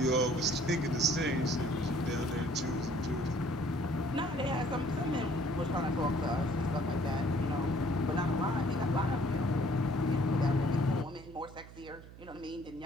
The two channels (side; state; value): right; noise; hum, 17 dB below the sound